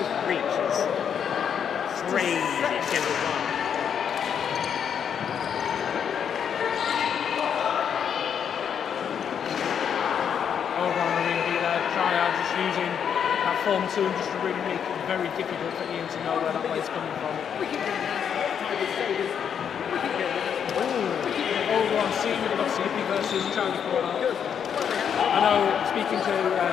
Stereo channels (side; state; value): right; quieter; 7.9 dB